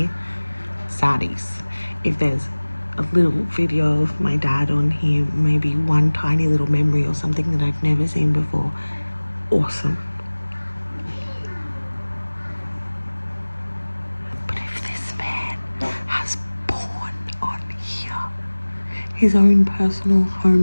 saddies. If there's a little video of my dad on here, maybe one tiny little memory or something that I've never seen before, awesome. But if this man has porn on here, his own personal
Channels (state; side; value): inverted; both; correlation -1.00